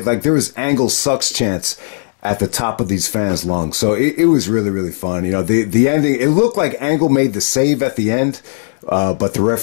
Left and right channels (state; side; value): silent; right; 66 dB below the other